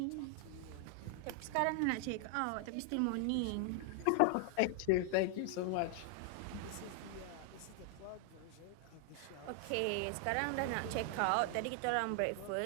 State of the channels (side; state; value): both; different; correlation 0.00